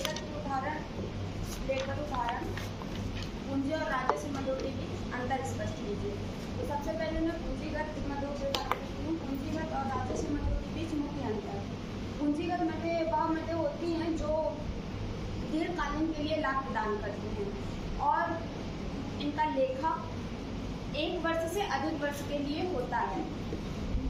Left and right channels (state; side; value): identical; both; correlation 1.00